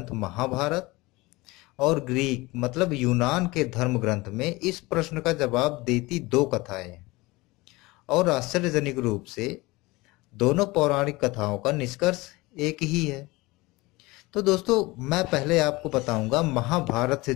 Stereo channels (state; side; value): quieter; right; 22.0 dB